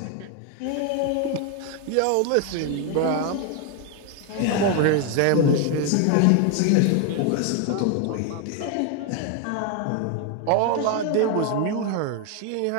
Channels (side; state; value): both; different; correlation 0.01